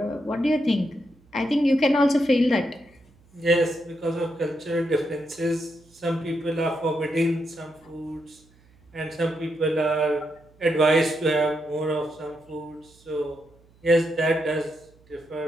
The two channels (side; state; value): right; noise; hum, 30 dB below the sound